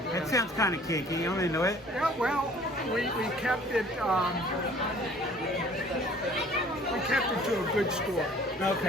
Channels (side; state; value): both; normal; correlation 0.53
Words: that sounds kind of kinky. You don't know it? Yeah, well, we kept it. We kept it to a good score.